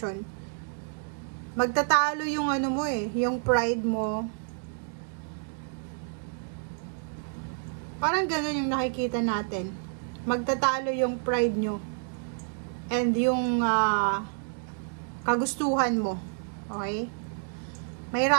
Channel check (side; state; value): left; silent; digital silence